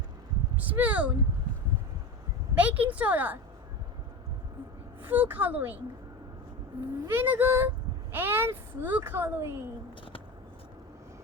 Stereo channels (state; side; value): normal; both; correlation 0.26